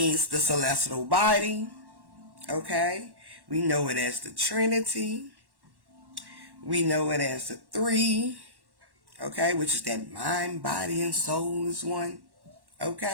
the celestial body, okay. We know it as the Trinity. We know it as the three, okay, which is that mind, body, and soul is one,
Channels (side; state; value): left; late; 1.1 ms